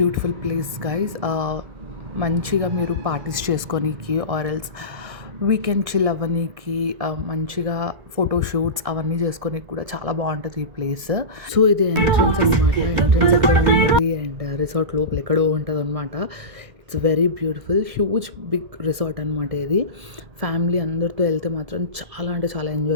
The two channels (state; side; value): late; left; 1.6 ms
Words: ప్లేస్ గైస్. మంచిగా మీరు పార్టీస్ చేసుకోనీకి ఆర్ ఎల్స్ వీకెండ్ చిల్ అవ్వనీకి, మంచిగా ఫోటోషూట్స్ అవన్నీ చేసుకోనీకి కూడా చాలా బాగుంటుంది ఈ ప్లేస్. సో ఇది ఎంట్రన్స్ అనమాట. ఎంట్రన్స్ ఎక్కడ ఉంటుంది అండ్ రిసార్ట్ లోపల ఎక్కడో ఉంటుంది అనమాట. It's very beautiful, huge big resort అనమాట ఇది. ఫ్యామిలీ అందరితో వెళ్తే మాత్రం చాలా అంటే చాలా